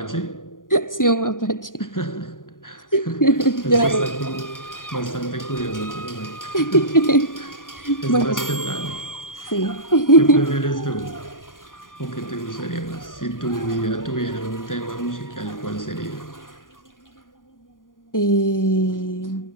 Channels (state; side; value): late; right; 0.89 ms